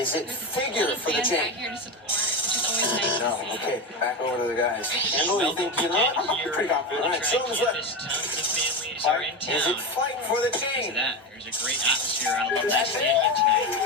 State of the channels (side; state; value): both; normal; correlation 0.18